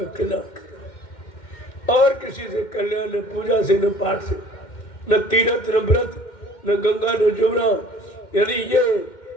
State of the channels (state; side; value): late; right; 2.1 ms